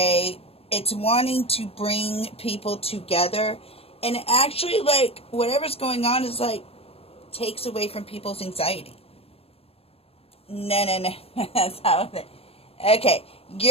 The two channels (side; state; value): right; late; 0.28 ms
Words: it's wanting to bring people together. And actually, like, whatever's going on is, like, takes away from people's anxiety. No. That's how it. Okay,